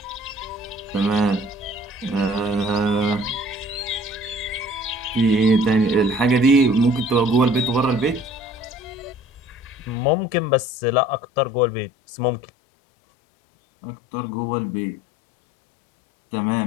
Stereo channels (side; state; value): right; drops out; at 10.0 s